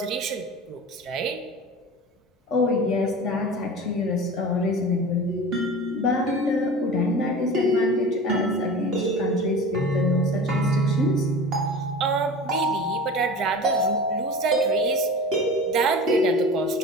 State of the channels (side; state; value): both; normal; correlation 0.35